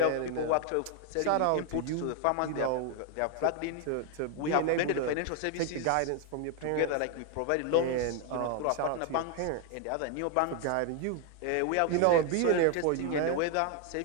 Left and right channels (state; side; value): different; both; correlation 0.00